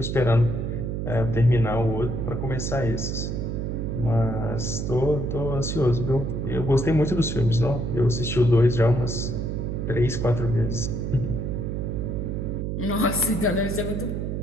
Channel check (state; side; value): noise; right; hum, 2 dB below the sound